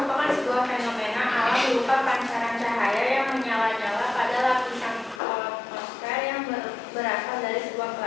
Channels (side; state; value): right; drops out; at 5.2 s